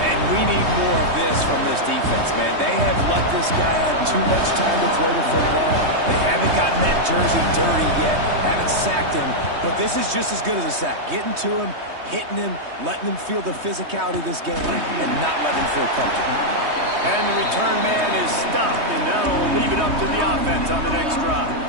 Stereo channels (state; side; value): late; left; 3.2 ms